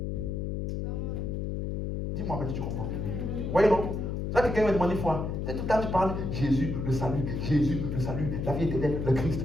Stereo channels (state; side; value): noise; left; hum, 2 dB below the sound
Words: Dis-moi, mais tu comprends. Vous voyez, non? Ça, quelqu'un m'a demandé une fois. Tout le temps, tu parles Jésus, le salut, la vie éternelle, le Christ.